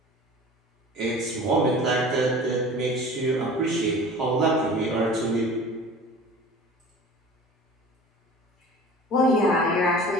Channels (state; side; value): normal; both; correlation 0.41